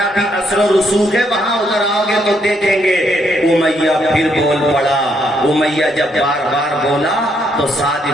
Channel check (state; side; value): normal; both; correlation 0.74